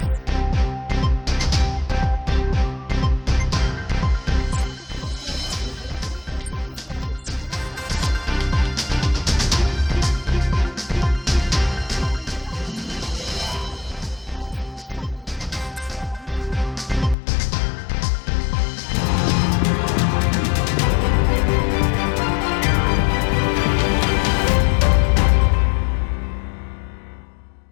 Satu petugas medis di Belitung positif COVID-19. Puluhan jurnalis di Pangkal Pinang jalani rapid test usai liputan seremonial.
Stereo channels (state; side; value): drops out; right; at 17.2 s